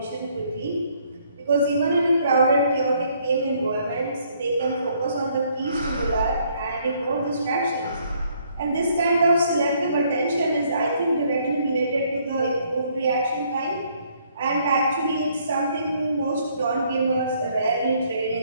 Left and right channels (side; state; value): both; inverted; correlation -0.66